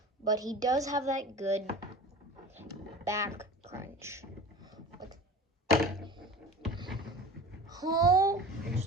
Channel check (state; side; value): normal; both; correlation 0.37